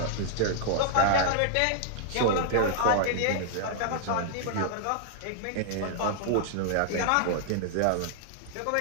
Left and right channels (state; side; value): different; both; correlation -0.01